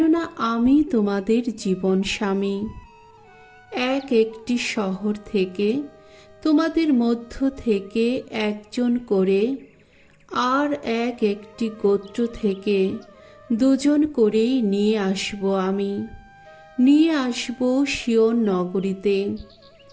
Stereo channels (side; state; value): both; identical; correlation 1.00